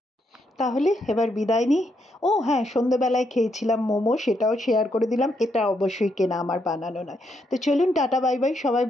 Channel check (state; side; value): normal; both; correlation 0.77